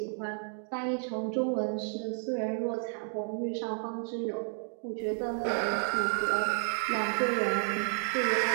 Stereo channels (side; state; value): left; silent; 56 dB below the other